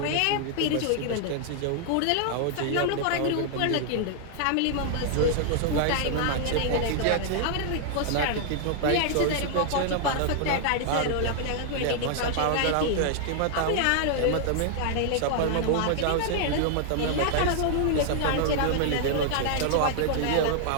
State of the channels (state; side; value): different; both; correlation 0.00